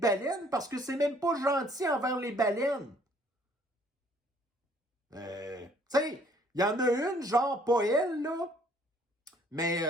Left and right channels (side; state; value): both; normal; correlation 0.61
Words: parce que c'est même pas gentil envers les baleines. Tu sais, il y en a une, genre pas elle, là. Mais,